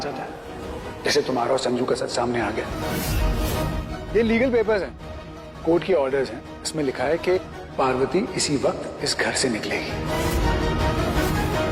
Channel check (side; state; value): both; identical; correlation 1.00